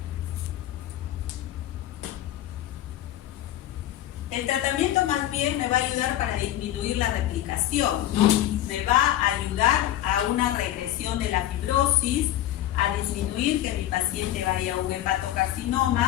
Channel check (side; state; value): right; quieter; 13.4 dB